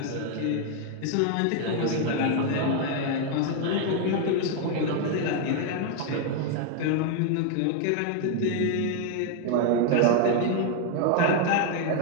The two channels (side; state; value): both; different; correlation 0.01